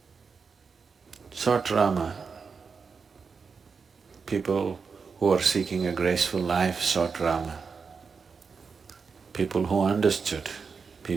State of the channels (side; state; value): left; quieter; 5.4 dB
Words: sought Rama, people who are seeking a graceful life sought Rama, people who understood,